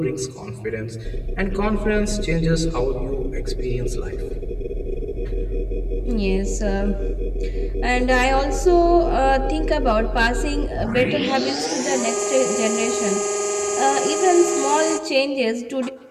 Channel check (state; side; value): identical; both; correlation 1.00